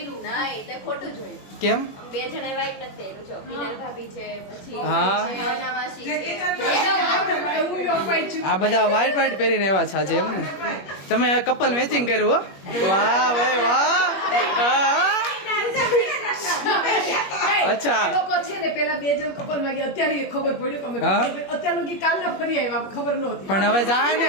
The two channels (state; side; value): late; right; 21 ms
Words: ખોટું જોયું કેમ બે જણે વાઈટ નથી પહેર્યું છો પીનલ ભાભી છે પછી હા. છે, અનાવાસી છે આ બધા વ્હાઈટ વ્હાઈટ પહેરીને આવ્યા છે આજે એમ ને તમે કપલ મેચિંગ કર્યું હો વાહ ભાઈ વાહ હા. અચ્છા. લોકો છે ને પેલા બે જણ કપલ માં ગયા અત્યારે એ ખબર પડી કે અમે હા. અત્યાર લગી કાલના ફરી આવ્યા ખબર નહોતી પણ હવે જાય ને